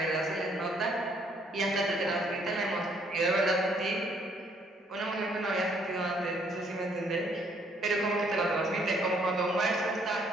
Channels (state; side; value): normal; both; correlation 0.66